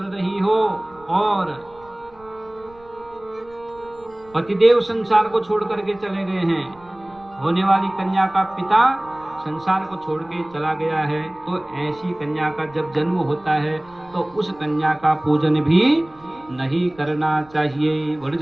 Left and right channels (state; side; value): noise; right; rumble, 27 dB below the sound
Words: रही हो और पतिदेव संसार को छोड़ करके चले गए हैं, होने वाली कन्या का पिता संसार को छोड़ के चला गया है, तो ऐसी कन्या का जब जन्म होता है तो उस कन्या का पूजन भी नहीं करना चाहिए। बड़ी